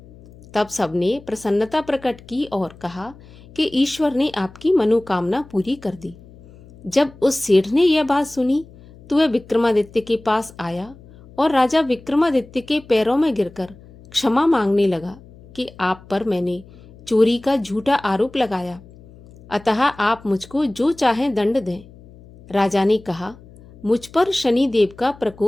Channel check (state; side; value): noise; left; hum, 22 dB below the sound